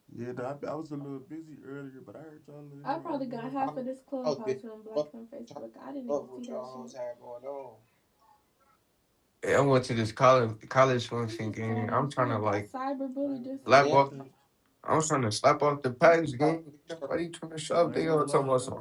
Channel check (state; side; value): identical; both; correlation 1.00